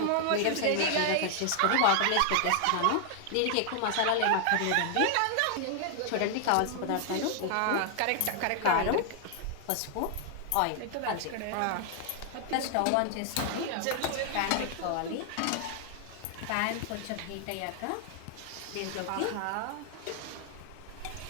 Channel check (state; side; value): different; both; correlation 0.00